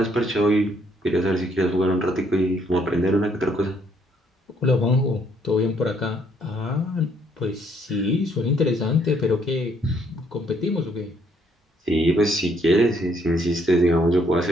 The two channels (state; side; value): normal; both; correlation 0.68